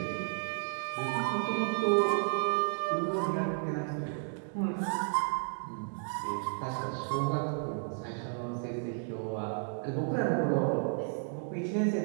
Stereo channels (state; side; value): silent; left; 56 dB below the other